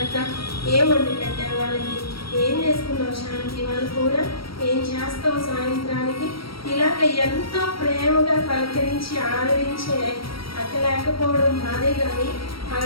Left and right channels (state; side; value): late; right; 0.75 ms